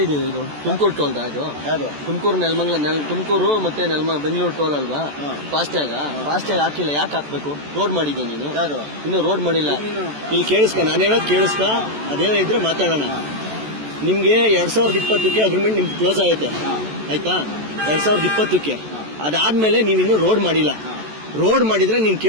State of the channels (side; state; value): left; late; 14 ms